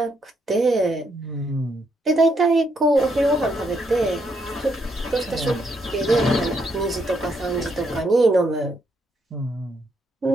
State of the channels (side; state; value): both; normal; correlation 0.76